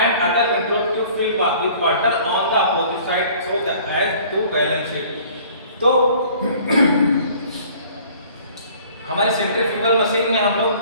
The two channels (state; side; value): inverted; both; correlation -0.52